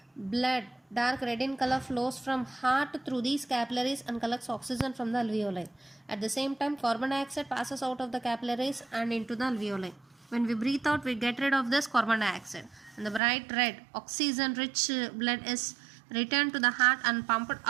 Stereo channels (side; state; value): left; drops out; at 13.2 s